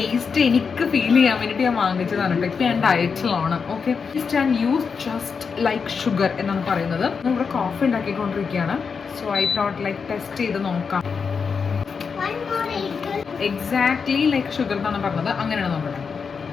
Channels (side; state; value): right; quieter; 5.7 dB